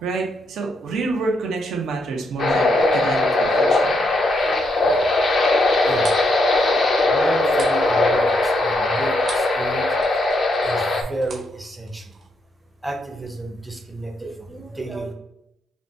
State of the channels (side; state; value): both; normal; correlation 0.78